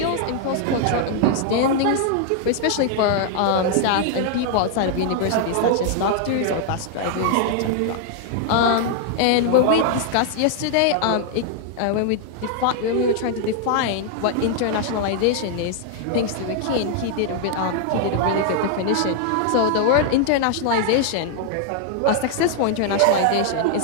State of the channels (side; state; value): both; different; correlation 0.00